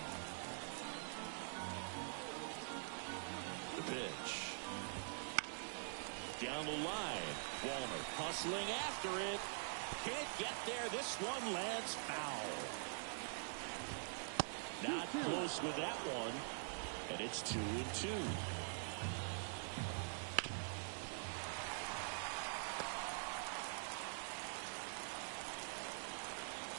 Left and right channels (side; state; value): left; silent; digital silence